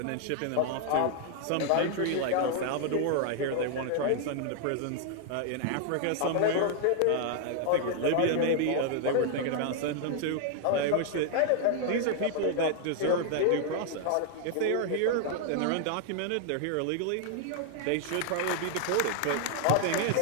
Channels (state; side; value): different; both; correlation 0.00